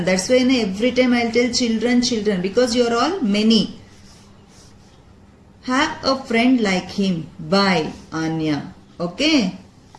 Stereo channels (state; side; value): identical; both; correlation 1.00